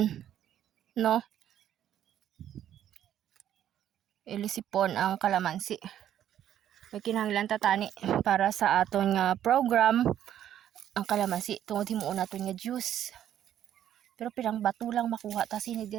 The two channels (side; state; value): left; quieter; 10.9 dB